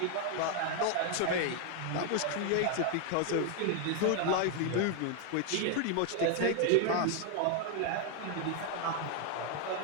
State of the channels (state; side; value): different; both; correlation 0.00